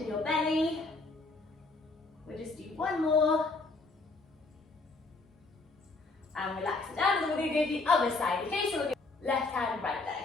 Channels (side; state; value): right; quieter; 3.5 dB